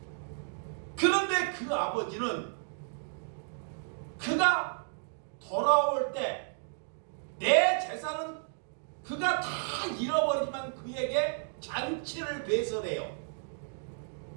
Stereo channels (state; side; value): silent; left; digital silence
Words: 그런데 그 아버지는 그가 돌아올 때 내 재산은 그가 다 잃어버리지만 그에게 잔치를 배설해요.